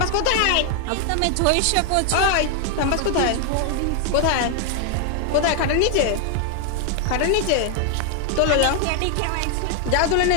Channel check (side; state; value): both; different; correlation 0.00